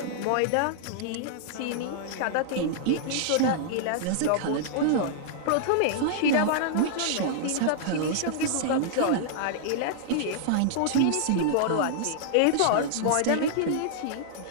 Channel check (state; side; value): different; both; correlation -0.01